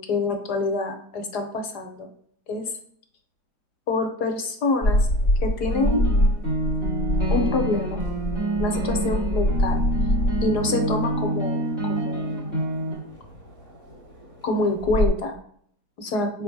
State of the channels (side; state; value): right; late; 4.9 ms